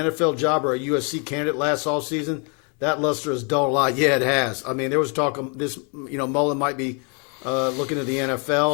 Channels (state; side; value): quieter; right; 36.9 dB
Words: job or a USC candidate last offseason? That luster has dulled a lot. Yeah, it has. I mean, there was talk of this, Mullen might be looking at the